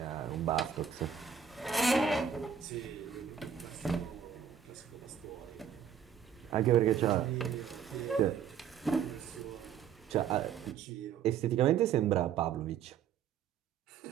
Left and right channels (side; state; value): left; quieter; 8.0 dB